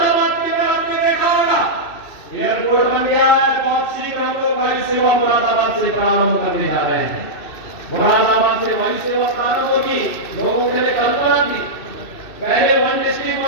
के अंदर आपने देखा होगा एयरपोर्ट बन गया है। बहुत शीघ्र हम लोग वायु सेवा मुरादाबाद से प्रारंभ करने जा रहे हैं। मुरादाबाद से वायु सेवा प्रारंभ होगी। लोगों के लिए कल्पना थी पहले 1 डिस्ट्रिक्ट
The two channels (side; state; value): right; late; 2.6 ms